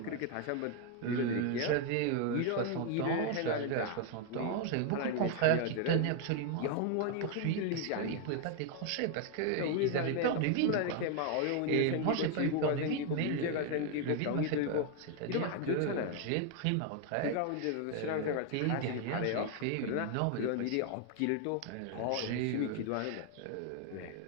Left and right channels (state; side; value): different; both; correlation 0.01